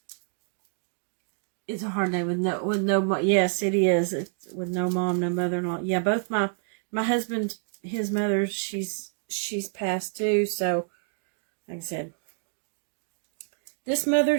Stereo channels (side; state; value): left; silent; digital silence